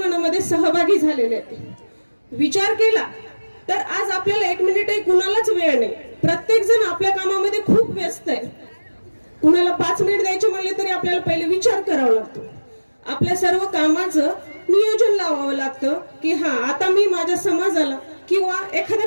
सहभागी झालेले आहेत। विचार केला तर आज आपल्याला एक मिनिटही कुणालाच वेळ नाही, प्रत्येक जण आपल्या कामामध्ये खूप व्यस्त आहे। कुणाला 5 मिनिट द्यायचे म्हणले तरी आपल्याला पहिले विचार करावा लागतो, आपल्या सर्व कामाचं नियोजन लावावं लागतं की हा आता मी माझ्या समाजाला किंवा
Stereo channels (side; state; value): both; inverted; correlation -1.00